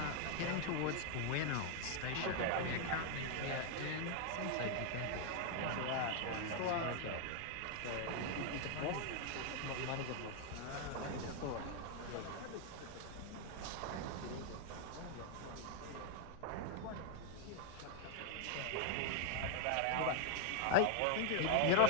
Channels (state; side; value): different; both; correlation 0.00